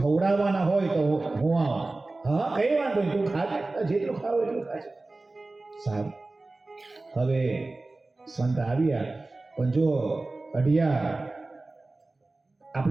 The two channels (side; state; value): left; quieter; 3.2 dB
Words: હોય તો હું આવું. હા કઈ વાંધો નહીં, તું ખાજે, જેટલું ખાવ એટલું ખાજે. સારું. હવે સંત આવ્યા, પણ જો અઢિયા,